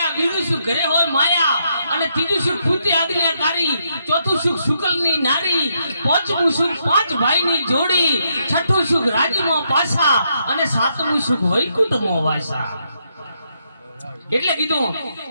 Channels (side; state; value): both; inverted; correlation -0.78